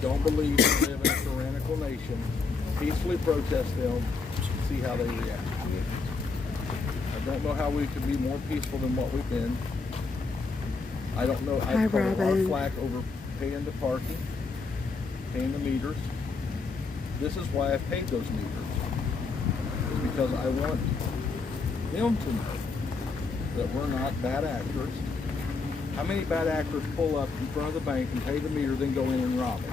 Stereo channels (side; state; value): right; quieter; 4.3 dB